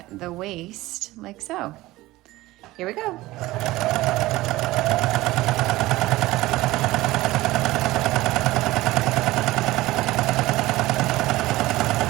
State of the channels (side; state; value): left; quieter; 18.2 dB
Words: the waist like so. Here we go.